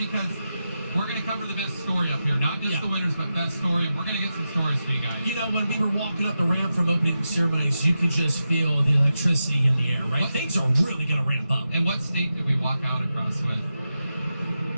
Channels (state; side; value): inverted; both; correlation -0.90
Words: we're going to cover the best story up here. Not just the winners, but best story. And we're going to get some stories for you guys. You know, when we were walking up the ramp from opening ceremonies, you could just feel the electricity in the air, right? Things are really going to ramp up. And what state did we walk out across with?